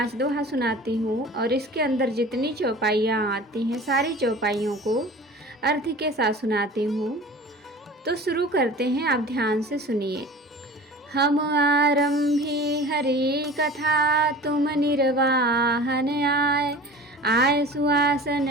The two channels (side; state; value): both; normal; correlation 0.40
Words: दोहा सुनाती हूँ और इसके अंदर जितनी चौपाइयाँ आती हैं सारी चौपाइयों को अर्थ के साथ सुनाती हूँ। तो शुरू करते हैं, आप ध्यान से सुनिए। हम आरंभी हरि कथा, तुम निर्वाहन आए। आय सुआसन